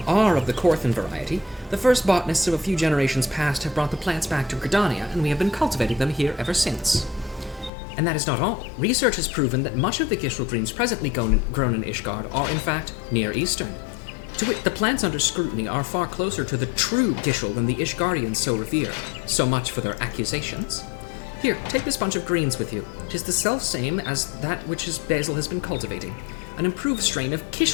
are of the Corthan variety. The first botanists of a few generations past have brought the plants back to Gridania, and we have been cultivating them here ever since. And that is not all. Research has proven that much of the Gishel greens presently grown in Ishgard are, in fact, Near Eastern. To wit, the plants under scrutiny are far closer to the true Gishel than the Ishgardians so revere. So much for their accusations. Here, take this bunch of greens with you. 'Tis the self-same as that which Basil has been cultivating. An improved strain of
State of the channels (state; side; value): drops out; right; at 7.7 s